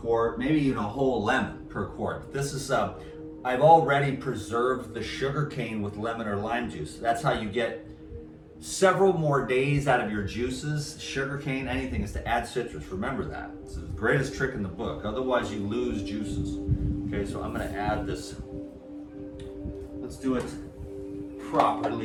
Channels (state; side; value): identical; both; correlation 1.00